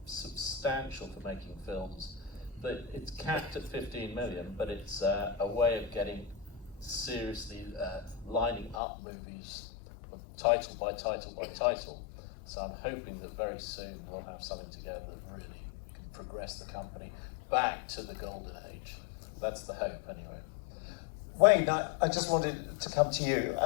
substantial for making films. But it's capped at 15 million, but it's a way of getting seriously lining up movies title by title by title. So I'm hoping that very soon we'll have something together that really can progress the company back to the golden age. That's the hope anyway. Wayne, I just wanted to come to you.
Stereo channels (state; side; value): drops out; right; at 8.8 s